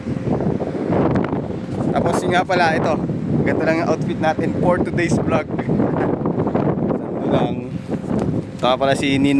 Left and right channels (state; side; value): identical; both; correlation 1.00